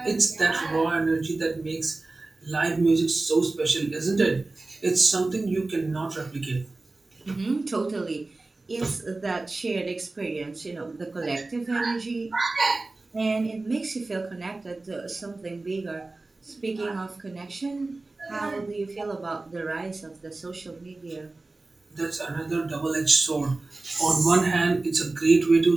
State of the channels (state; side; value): quieter; left; 3.3 dB